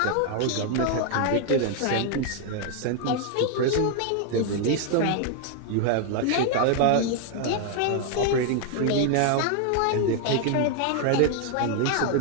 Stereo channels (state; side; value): different; both; correlation 0.00